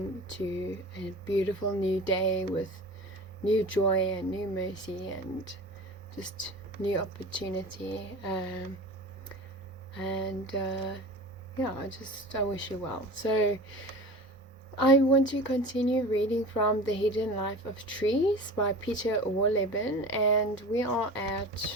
to a beautiful new day with new joy and new mercy and just new opportunity. And yeah, I wish you well. So I want to continue reading from The Hidden Life of Trees by Peter Wohlleben, and we are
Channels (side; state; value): both; normal; correlation 0.35